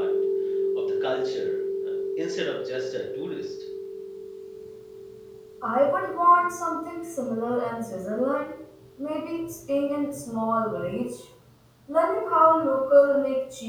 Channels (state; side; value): identical; both; correlation 1.00